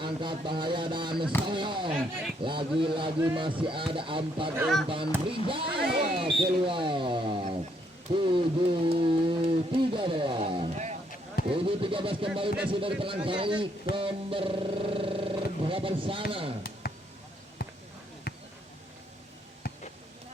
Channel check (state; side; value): normal; both; correlation 0.72